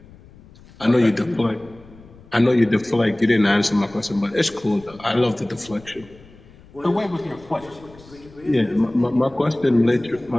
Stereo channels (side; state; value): left; noise; rumble, 23 dB below the sound